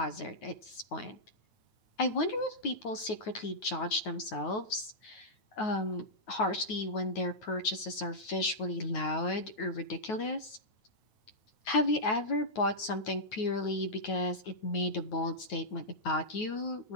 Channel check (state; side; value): late; right; 9.3 ms